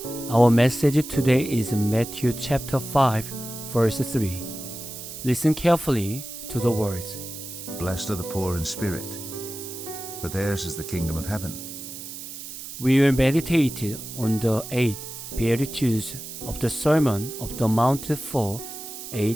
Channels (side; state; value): right; noise; hiss, 10 dB below the sound